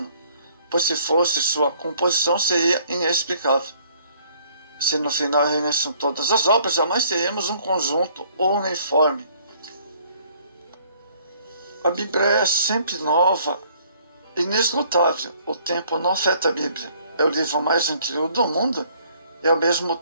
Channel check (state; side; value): inverted; both; correlation -0.60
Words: pois se fosse, sua composição seria inexplicável. Se no final reunissem todas as obras, jamais teríamos um conjunto uniforme. A Bíblia é sempre nova, inesgotável. O tempo não afeta a Bíblia. É o livro mais antigo do mundo e ao mesmo